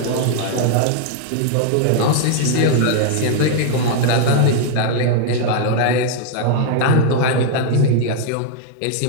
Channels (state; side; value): different; both; correlation 0.00